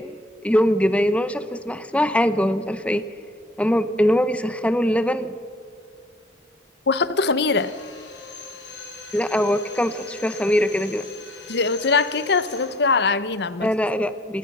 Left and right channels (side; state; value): both; normal; correlation 0.55